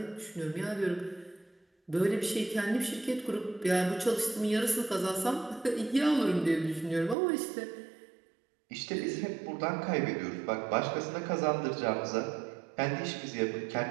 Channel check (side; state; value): left; drops out; at 7.2 s